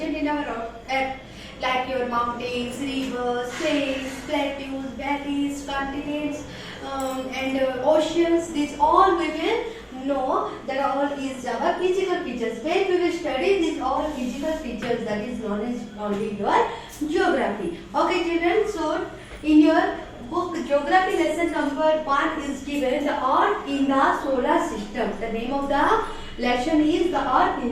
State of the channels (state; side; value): identical; both; correlation 1.00